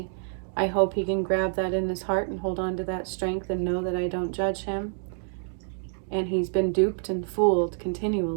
I hope he can grab that in his heart and hold on to that strength and know that I don't judge him. And he's been duped and fooled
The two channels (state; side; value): silent; left; digital silence